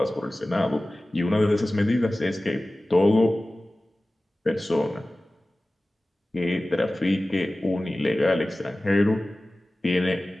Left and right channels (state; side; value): normal; both; correlation 0.97